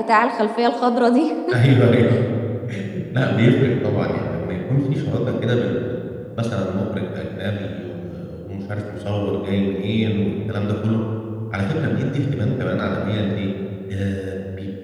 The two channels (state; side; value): identical; both; correlation 1.00